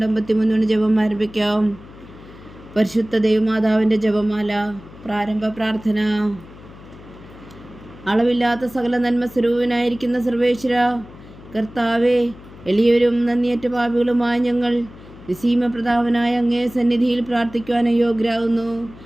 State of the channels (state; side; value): noise; left; hum, 19 dB below the sound